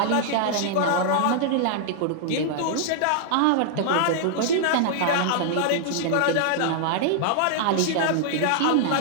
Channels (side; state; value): both; different; correlation -0.01